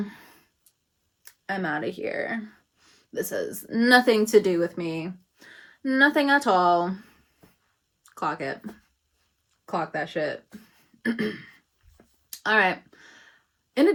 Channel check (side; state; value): both; identical; correlation 1.00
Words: out of here. This has nothing to do with me. Nothing at all. Clock it. Clock that shit. All right. In